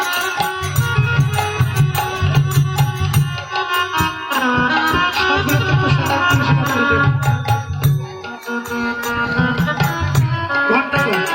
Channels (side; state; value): both; identical; correlation 1.00